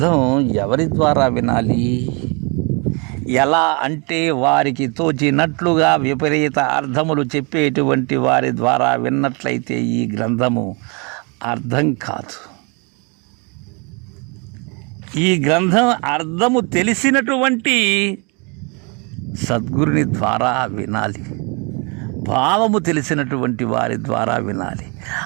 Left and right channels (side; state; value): left; quieter; 32.4 dB